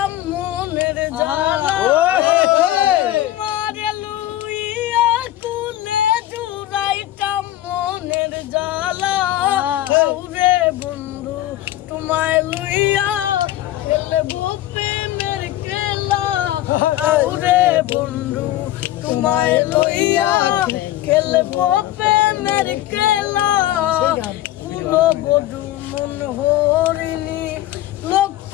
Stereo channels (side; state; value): right; quieter; 14.1 dB